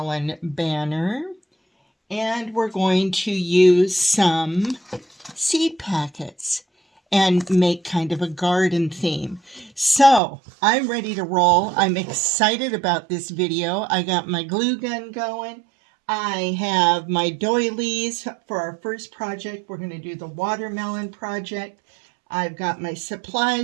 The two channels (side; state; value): left; drops out; at 10.2 s